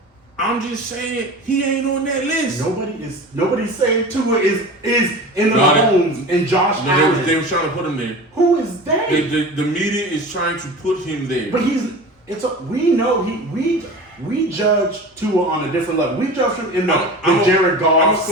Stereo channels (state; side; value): normal; both; correlation 0.34